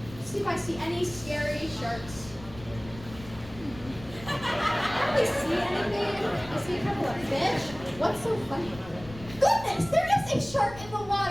See if I see any scary sharks. I don't really see anything. I see a couple of fish. What's so funny? Goodness, there is a shark in the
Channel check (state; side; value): noise; left; rumble, 16 dB below the sound